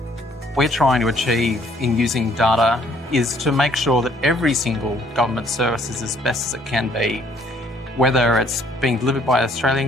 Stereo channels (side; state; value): both; normal; correlation 0.63